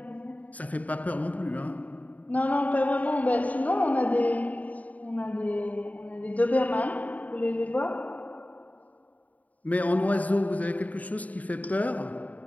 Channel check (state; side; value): late; right; 0.072 ms